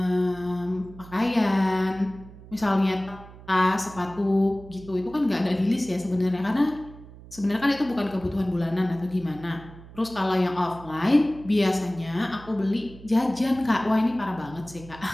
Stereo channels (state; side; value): noise; right; hum, 18 dB below the sound